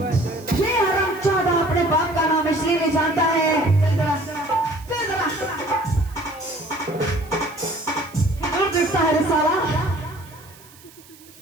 ये हरामजादा अपने बाप का नाम इसलिए नहीं जानता है। चल जरा, चल जरा। दूर दिखता है रे साला,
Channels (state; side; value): noise; right; hiss, 24 dB below the sound